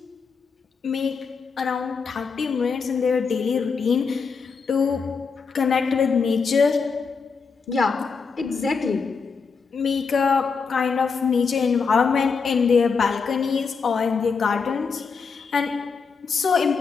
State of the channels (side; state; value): right; quieter; 5.3 dB